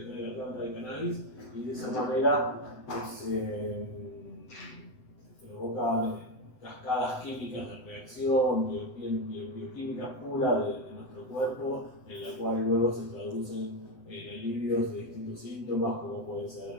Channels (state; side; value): late; right; 8.0 ms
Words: trae la planta de cannabis, y de esa manera se provocan cascadas químicas de reacción, bioquímica pura de nuestro cuerpo, en la cual luego se traducen en alivios de distintos síntomas, como puede